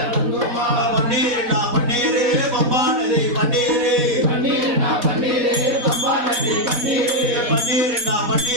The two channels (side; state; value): left; late; 4.1 ms